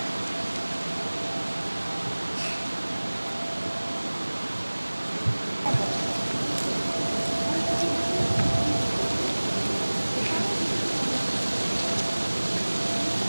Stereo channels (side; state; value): both; inverted; correlation -1.00